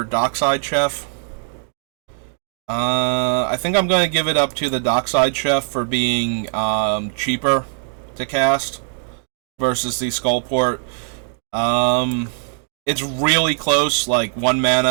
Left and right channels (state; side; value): silent; left; 61 dB below the other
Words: Dockside Chef. I think I'm going to give it up to the Dockside Chef for being cheaper to cast versus the Skullport. It's really close, like 1